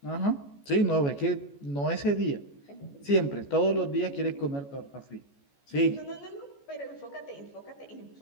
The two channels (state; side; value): late; right; 14 ms